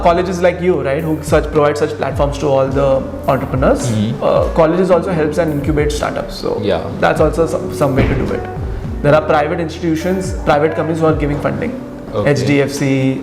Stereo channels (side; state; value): both; identical; correlation 1.00